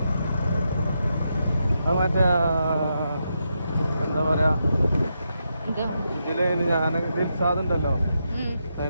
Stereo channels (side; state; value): both; inverted; correlation -0.84